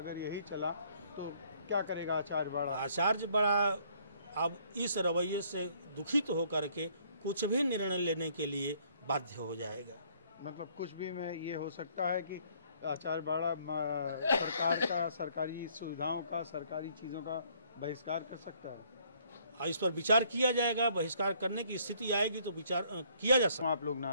यही चला तो क्या करेगा आचार्य बाड़ा? आचार्य बाड़ा अब इस रवैये से दुखित होकर के कुछ भी निर्णय लेने के लिए बाध्य हो जाएगा। मतलब कुछ भी में ये हो सकता है कि आचार्य बाड़ा सरकार का, सरकारी सुविधाओं का, सरकारी चीज़ों का बहिष्कार कर सकता है। इस पर विचार किया जाएगा। बहिष्कार करने की स्थिति आएगी तो विचार किया जा सकता है। आप लोग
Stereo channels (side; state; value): both; inverted; correlation -0.64